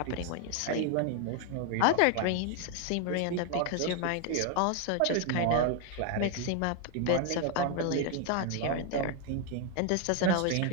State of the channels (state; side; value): different; both; correlation 0.01